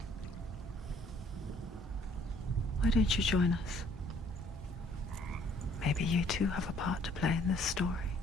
Why don't you join us? Maybe you too have a part to play in this story.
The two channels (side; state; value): both; normal; correlation 0.61